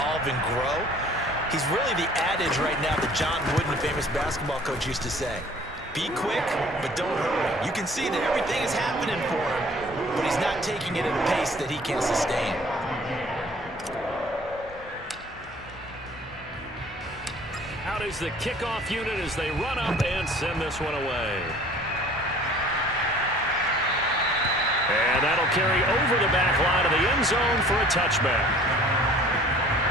and grow. He's really the adage right now that John Wooden, the famous basketball coach, used to say. Be quick, but don't hurry. You can see that everything is happening for him, but he's not taking it at a pace that he can sustain. Out is the kickoff unit as they run up and send this one away. And that'll carry over the back line of the end zone for a touchback.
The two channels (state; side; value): normal; both; correlation 0.51